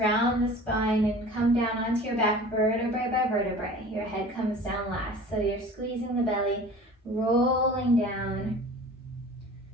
the spine and come down onto your back, vertebrae by vertebrae. Your head comes down last, so you're squeezing the belly, rolling down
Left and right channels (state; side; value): normal; both; correlation 0.42